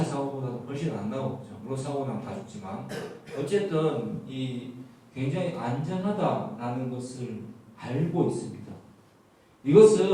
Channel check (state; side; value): identical; both; correlation 1.00